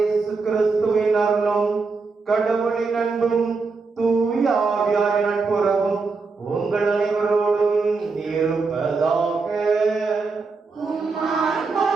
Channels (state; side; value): quieter; left; 4.3 dB